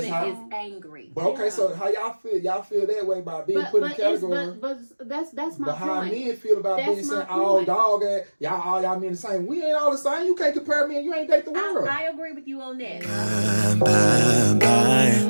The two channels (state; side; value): inverted; both; correlation -1.00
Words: using how- is angry. But okay, so how y'all feel? Y'all feel that way by being put in the category. But that's my But how point. men feel about That's being my saying all point. dog ass, all y'all men the same. We ain't all the same. You can't compare me and you ain't date the world. I agree with you on that. Bye,